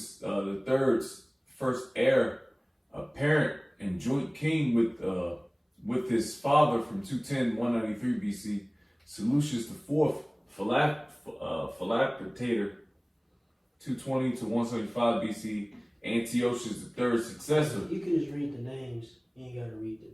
III's first heir, apparent and joint king with his father from 210 193 BC, Seleucus IV, Philocpator, 220 to 175 BC, Antiochus III's successor. You can just read the names. You ain't gotta read the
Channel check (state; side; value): identical; both; correlation 1.00